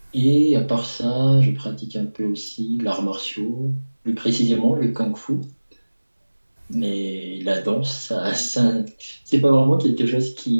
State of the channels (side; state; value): both; inverted; correlation -1.00